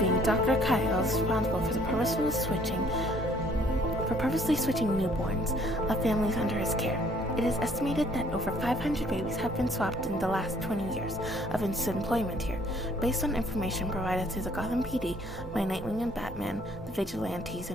Dr. Kyle is responsible for the purposely switching newborns of families under his care. It is estimated that over 500 babies have been swapped in the last 20 years of his employment here, based on information provided to the Gotham PD by Nightwing and Batman, the vigilantes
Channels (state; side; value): normal; both; correlation 0.61